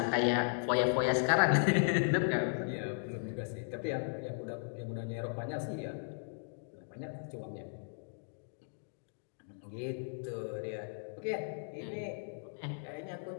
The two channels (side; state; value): right; silent; digital silence